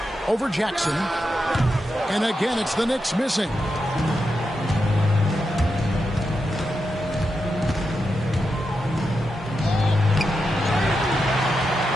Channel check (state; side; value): normal; both; correlation 0.87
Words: Over Jackson. And again, it's the Knicks missing.